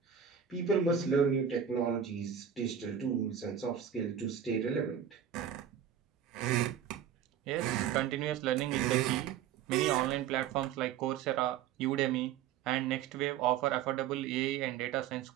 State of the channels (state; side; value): quieter; left; 8.9 dB